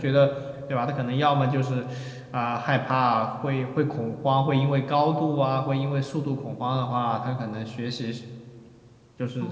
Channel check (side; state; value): both; identical; correlation 1.00